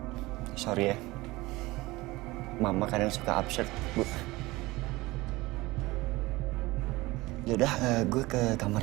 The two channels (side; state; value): left; quieter; 20.6 dB